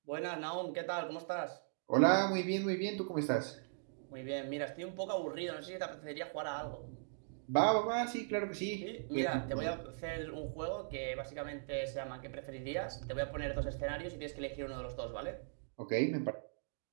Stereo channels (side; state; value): left; silent; digital silence